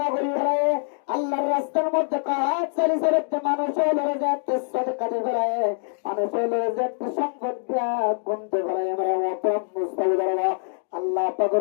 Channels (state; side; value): silent; right; 62 dB below the other